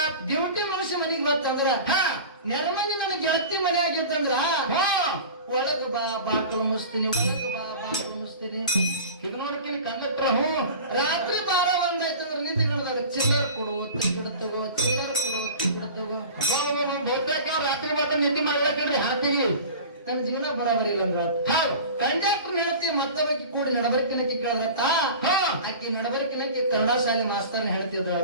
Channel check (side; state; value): both; inverted; correlation -0.37